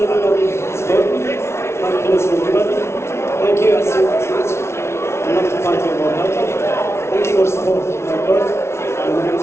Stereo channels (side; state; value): right; late; 0.13 ms